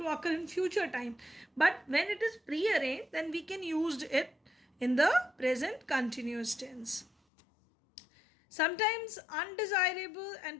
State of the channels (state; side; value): drops out; right; at 7.1 s